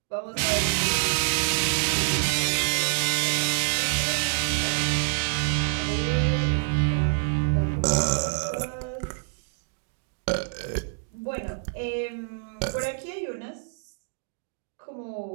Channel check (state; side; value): silent; left; digital silence